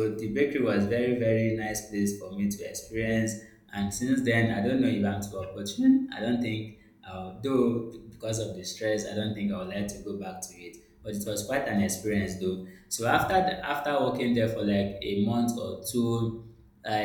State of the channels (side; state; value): both; identical; correlation 1.00